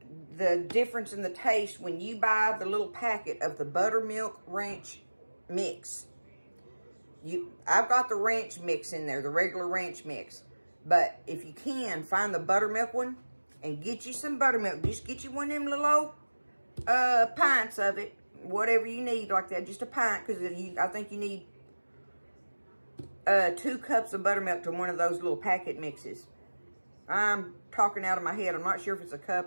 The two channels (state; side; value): inverted; both; correlation -1.00